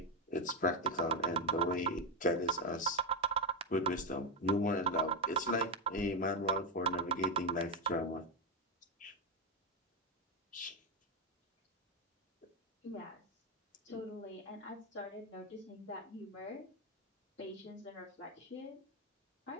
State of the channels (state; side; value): normal; both; correlation 0.05